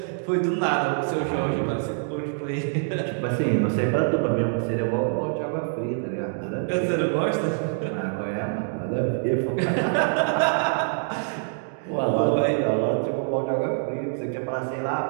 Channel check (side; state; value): left; silent; digital silence